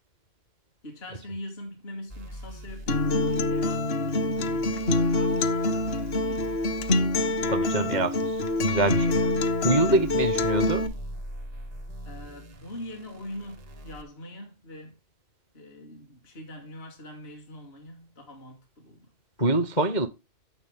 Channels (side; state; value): right; late; 2.8 ms